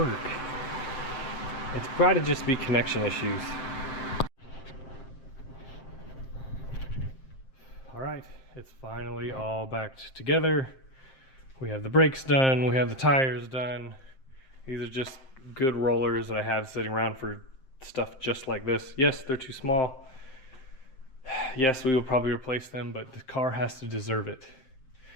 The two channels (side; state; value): right; late; 7.6 ms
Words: It's got to just be connection issues. All right, it's finally all back together. We have the brakes done, we have the tires done. These are just good rollers that I have sitting around for stuff just like this. Yes, they're too small. Yes, we will probably replace them, but the car has to deserve it.